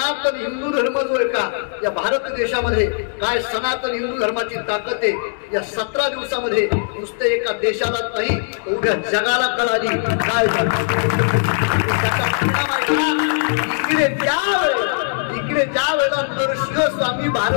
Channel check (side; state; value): right; silent; digital silence